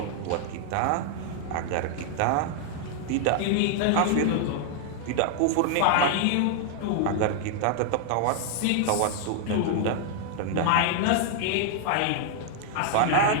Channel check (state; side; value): different; both; correlation 0.00